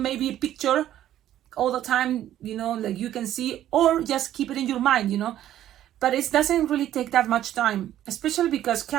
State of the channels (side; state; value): left; quieter; 12.2 dB